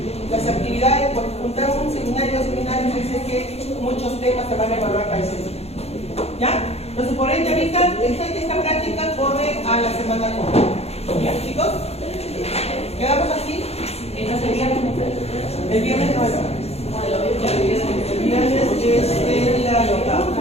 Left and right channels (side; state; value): right; late; 0.30 ms